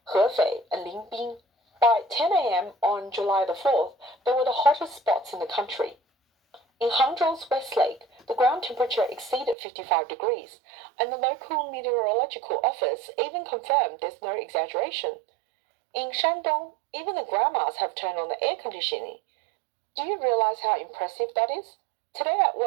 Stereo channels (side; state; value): left; drops out; at 9.6 s